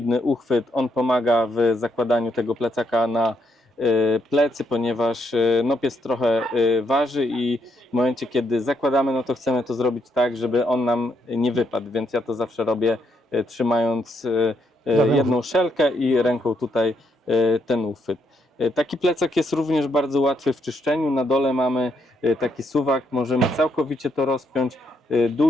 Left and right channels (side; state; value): both; normal; correlation 0.76